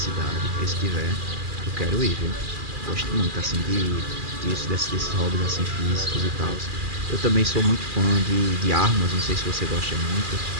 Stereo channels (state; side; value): late; left; 2.4 ms